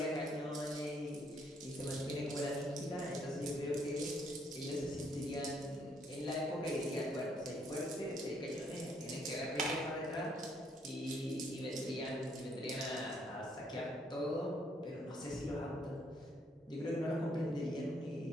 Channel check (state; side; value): normal; both; correlation 0.69